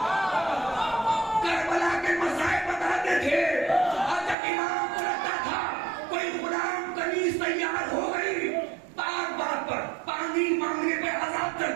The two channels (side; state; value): left; drops out; at 4.4 s